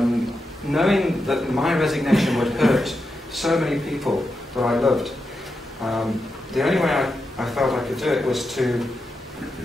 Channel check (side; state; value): both; normal; correlation 0.87